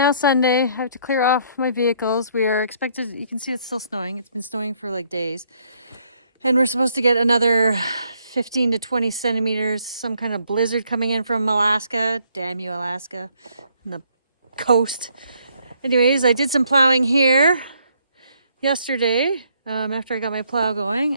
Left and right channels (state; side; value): inverted; both; correlation -0.69